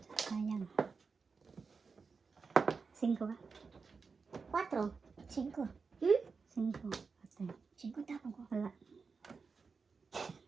Sayang. 5 ba? 4. 5. 5. Ate. 5 tapon ko. Wala.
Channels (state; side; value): quieter; left; 4.9 dB